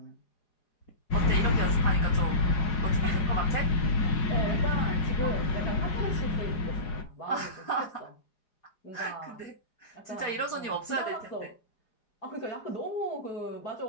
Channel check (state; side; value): late; right; 4.9 ms